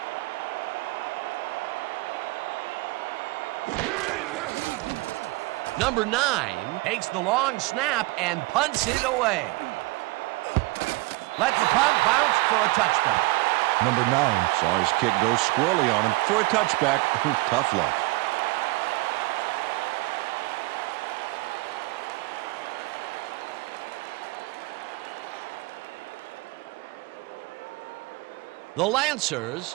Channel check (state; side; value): quieter; left; 22.9 dB